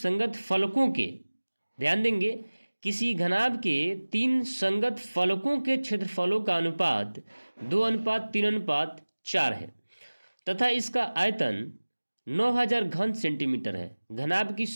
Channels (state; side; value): inverted; both; correlation -1.00